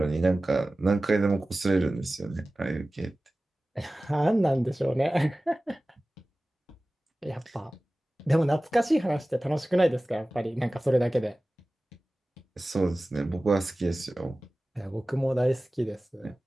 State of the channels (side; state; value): both; normal; correlation 0.97